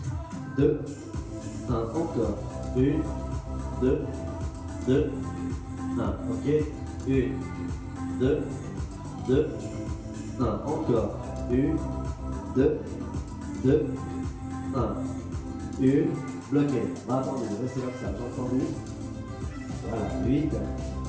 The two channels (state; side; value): identical; both; correlation 1.00